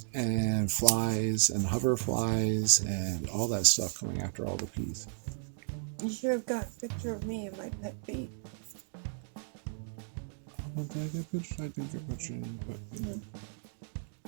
and flies and hoverflies and all that stuff coming after all the bees. You should have got a picture of me and my pet bee. I didn't get a picture of my pet bee.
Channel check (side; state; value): left; silent; digital silence